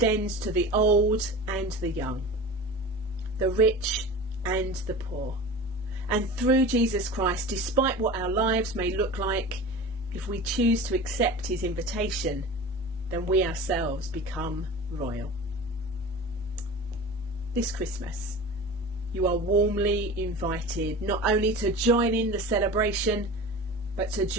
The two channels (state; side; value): normal; both; correlation 0.34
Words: to the old and the young, the rich and the poor. And through Jesus Christ, despite what our lives may look like, if we choose to accept his invitation, then we ourselves become royal. This Christmas, you are warmly invited not only to join in the celebration, but to